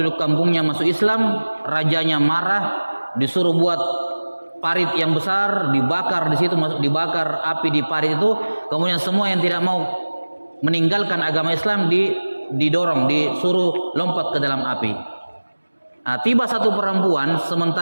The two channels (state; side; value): inverted; both; correlation -1.00